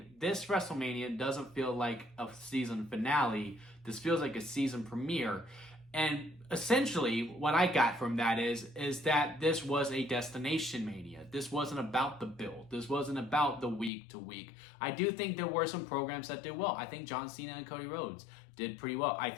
this WrestleMania doesn't feel like a season finale. This feels like a season premiere. And essentially, what I got from that is that this was a destination mania. This wasn't about the build. This wasn't about the week to week. I do think there were some programs that did well. I think John Cena and Cody Rhodes did pretty well. I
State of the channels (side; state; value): right; drops out; at 13.9 s